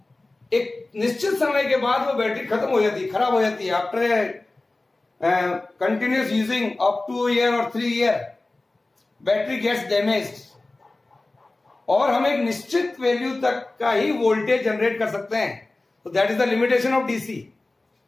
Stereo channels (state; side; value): quieter; right; 3.0 dB